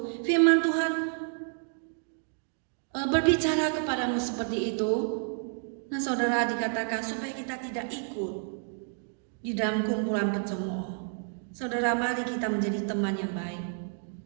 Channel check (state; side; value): silent; left; 58 dB below the other